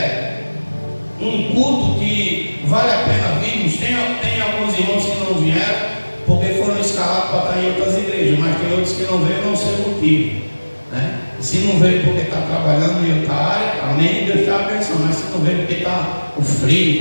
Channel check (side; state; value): both; inverted; correlation -1.00